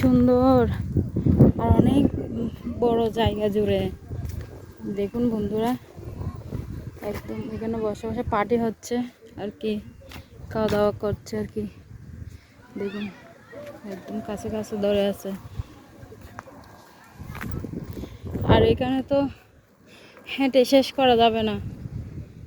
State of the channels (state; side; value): identical; both; correlation 1.00